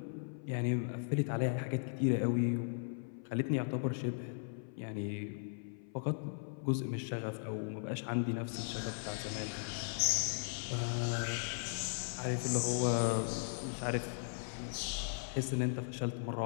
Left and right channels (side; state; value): right; silent; 53 dB below the other